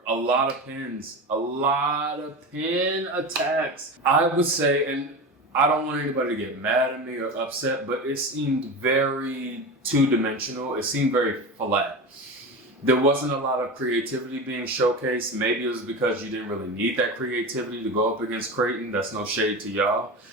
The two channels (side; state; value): both; normal; correlation 0.25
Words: a lot of pins, a lot of pin attacks. I would say, and I don't want anybody to get mad at me or upset, but it seemed very two-dimensional. It seemed very flat. There wasn't a lot of creativity being showcased. Maybe it was because you didn't really need that creativity to go up against Creighton. That's no shade to y'all.